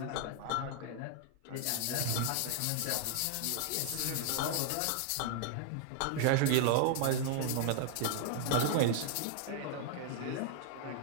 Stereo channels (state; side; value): different; both; correlation 0.00